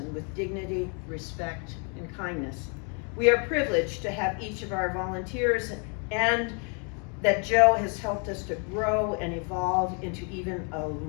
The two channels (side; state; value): right; quieter; 37.9 dB